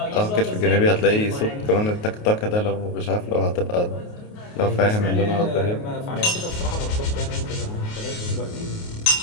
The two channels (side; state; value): right; late; 28 ms